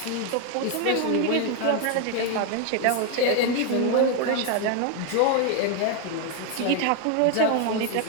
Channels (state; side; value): different; both; correlation 0.01